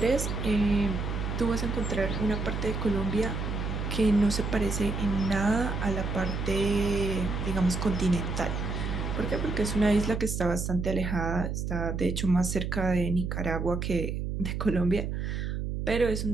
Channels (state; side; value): noise; right; hum, 3 dB below the sound